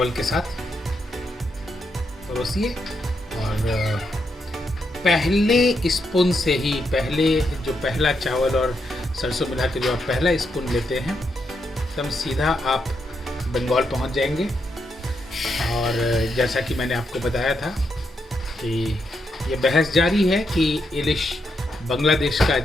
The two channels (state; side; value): normal; both; correlation 0.81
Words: के साथ परोसिए। और पहले स्पून से ही पहला चावल और सरसों मिला के जो आप पहला स्पून लेते हैं एकदम सीधा आप बंगाल पहुंच जाएंगे। और जैसा कि मैंने आपको बताया था कि ये बहस जारी है कि इलिश बांग्लादेश का